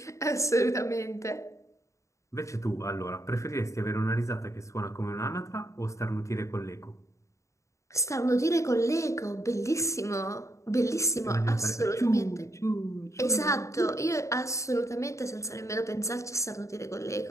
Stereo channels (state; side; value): late; right; 0.15 ms